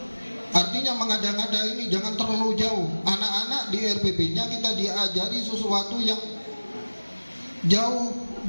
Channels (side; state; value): both; inverted; correlation -1.00